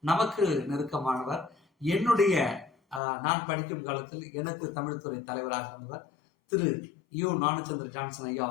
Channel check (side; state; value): right; drops out; at 3.0 s